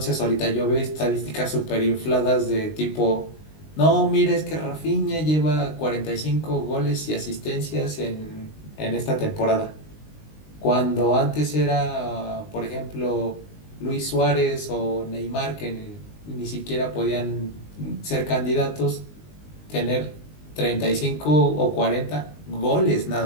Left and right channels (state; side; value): late; right; 19 ms